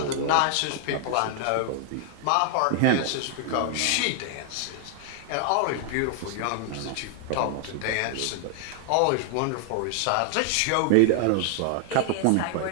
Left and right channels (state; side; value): different; both; correlation 0.00